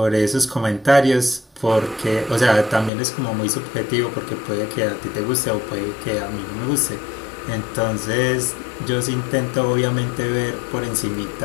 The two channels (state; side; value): drops out; right; at 2.9 s